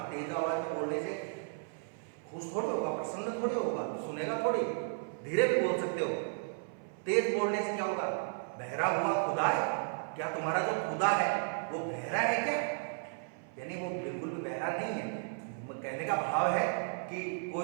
तेज आवाज में बोलने से खुश थोड़ी होगा, प्रसन्न थोड़ी होगा, सुनेगा थोड़ी। धीरे भी बोल सकते हो। तेज बोलने से क्या होगा? बहरा हुआ खुदा है क्या? तुम्हारा जो खुदा है वो बहरा है क्या? यानी वो बिल्कुल भी बहरा नहीं है। कहने का भाव है कि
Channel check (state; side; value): silent; left; 55 dB below the other